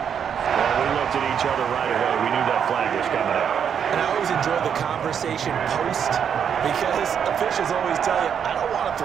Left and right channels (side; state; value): left; quieter; 7.9 dB